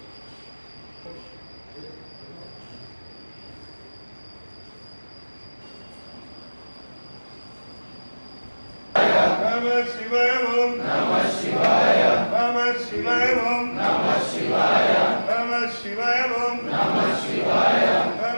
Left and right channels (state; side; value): inverted; both; correlation -1.00